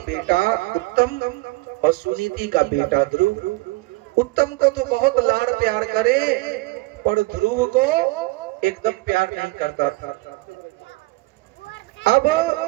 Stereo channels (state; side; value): quieter; left; 22.0 dB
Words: उत्तम और सुनीति का बेटा ध्रुव। उत्तम को तो बहुत लाड़ प्यार करे, पर ध्रुव को एकदम प्यार नहीं करता था। अब